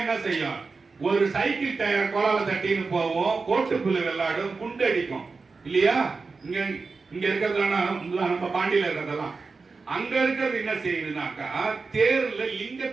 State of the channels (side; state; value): left; quieter; 4.3 dB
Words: என்ன செய்யும்? ஒரு சைக்கிள் டயர் கோலால தட்டின்னு போவோம், கோட்டு புல்லு விளையாடும், குண்டு அடிக்கும் இல்லையா? இங்க இருக்கிறதெல்லாம் நம்ம பாண்டியில இருக்கிறதெல்லாம். அங்க இருக்கிறது என்ன செய்யுதுனாக்கா, தேர்ல